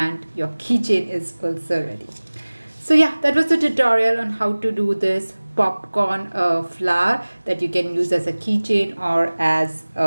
your keychain is also ready. So yeah, that was the tutorial on how to do this popcorn flower that you can use as a keychain or as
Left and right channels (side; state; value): both; inverted; correlation -1.00